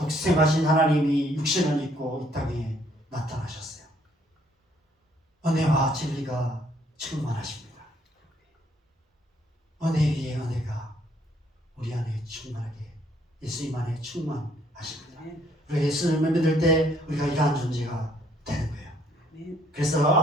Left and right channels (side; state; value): both; normal; correlation 0.66